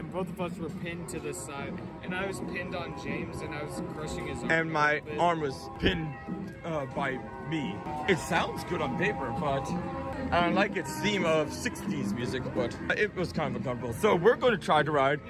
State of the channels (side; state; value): both; identical; correlation 1.00